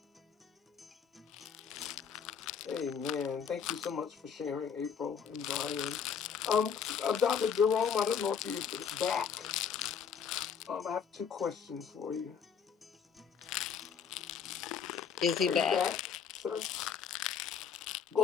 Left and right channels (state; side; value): quieter; right; 7.0 dB